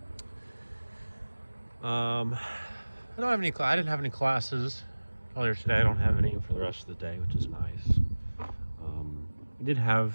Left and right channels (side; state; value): both; inverted; correlation -1.00